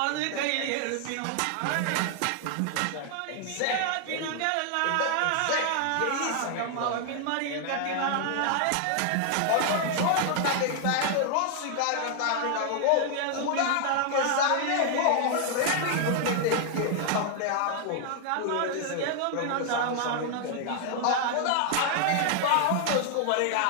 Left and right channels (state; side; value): different; both; correlation 0.00